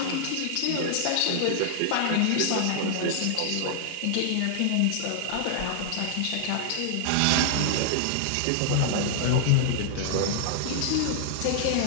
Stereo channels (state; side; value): different; both; correlation -0.01